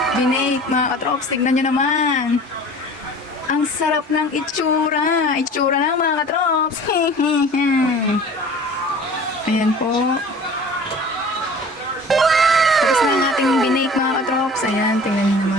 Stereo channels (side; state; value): both; normal; correlation 0.43